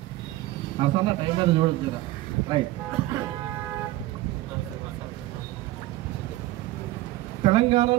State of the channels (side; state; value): left; quieter; 17.1 dB